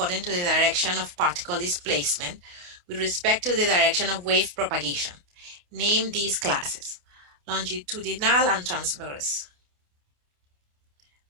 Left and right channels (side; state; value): left; late; 28 ms